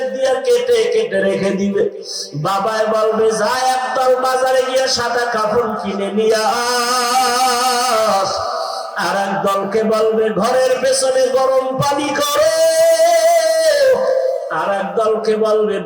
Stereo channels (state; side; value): identical; both; correlation 1.00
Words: দিয়া কেটে কেটে রেখে দিবে। বাবায় বলবে, যা একদল বাজারে গিয়ে সাদা কাপড় কিনে নিয়ে আস। আর এক দলকে বলবে, ঘরের পেছনে গরম পানি করো। আর এক দলকে বলবে,